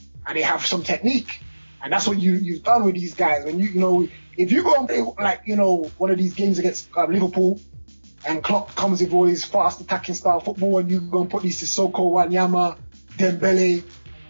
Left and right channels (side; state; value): both; inverted; correlation -1.00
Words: and they have some technique. And that's what you've done with these guys. When if you go and play one of these games against Liverpool, and Klopp comes with all his fast attacking style football, and you go and put these Sissoko, Wanyama, Dembele,